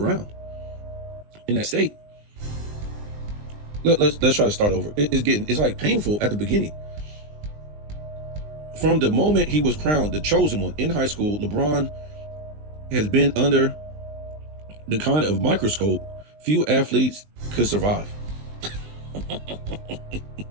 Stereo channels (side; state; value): left; late; 19 ms